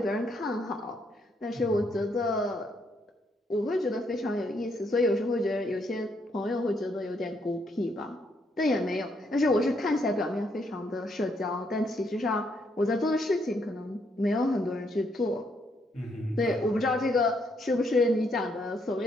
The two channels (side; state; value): both; normal; correlation 0.74